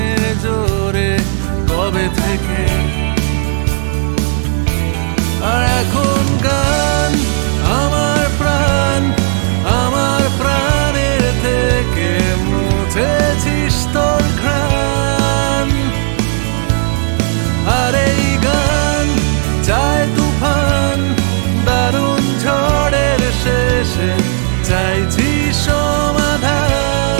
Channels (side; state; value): left; silent; digital silence